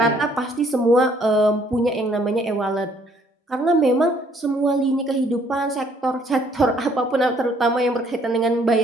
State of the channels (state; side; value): normal; both; correlation 0.64